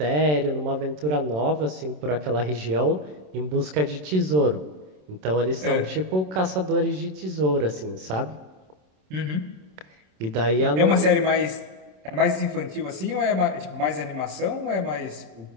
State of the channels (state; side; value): late; left; 27 ms